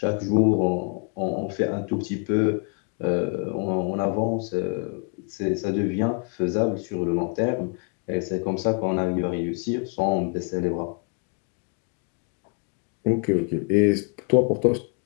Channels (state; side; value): quieter; right; 38.0 dB